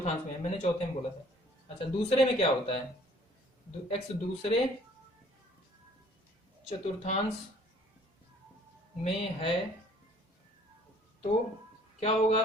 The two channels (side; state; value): both; normal; correlation 0.56